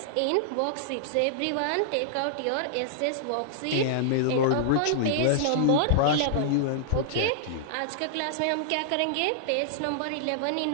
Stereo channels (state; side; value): different; both; correlation -0.01